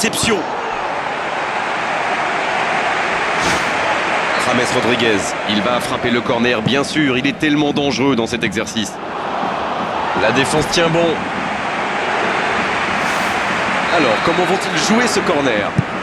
James Rodriguez, il va frapper le corner, bien sûr, il est tellement dangereux dans cet exercice. La défense tient bon. Alors, comment vont-ils jouer ce corner?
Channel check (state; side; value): identical; both; correlation 1.00